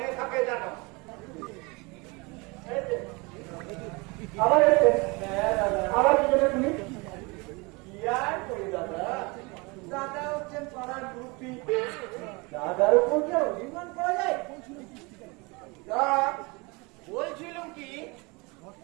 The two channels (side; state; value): left; quieter; 27.1 dB